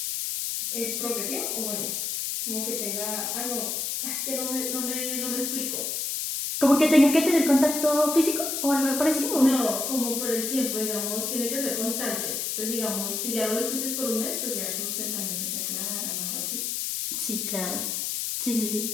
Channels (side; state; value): left; noise; hiss, 1 dB below the sound